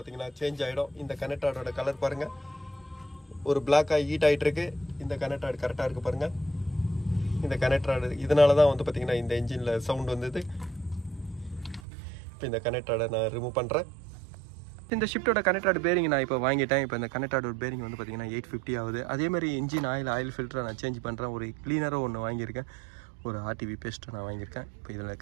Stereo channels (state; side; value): drops out; left; at 11.8 s